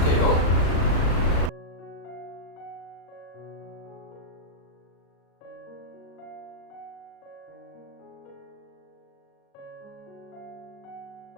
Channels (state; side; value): late; right; 37 ms